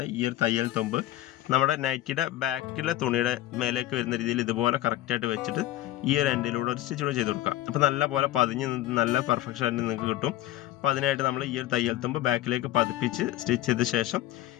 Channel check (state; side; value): quieter; right; 15.0 dB